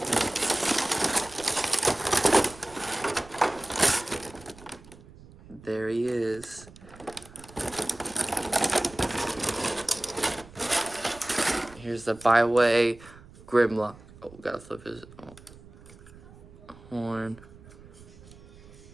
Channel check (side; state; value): right; noise; rumble, 21 dB below the sound